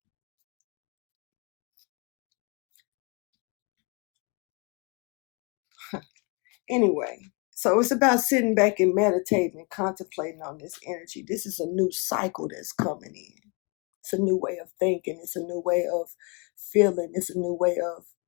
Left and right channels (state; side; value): quieter; right; 32.8 dB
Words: Anyway, so it's about sitting back and meditating and contemplating on this energy. This is a new cycle that's coming in. It's a new way of thinking. It's a new way of feeling. It's a new way of